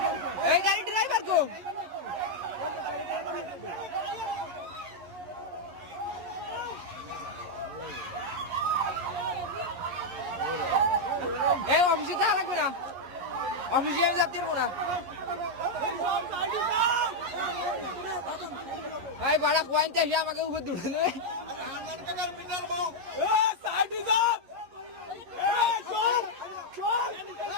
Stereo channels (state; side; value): late; left; 11 ms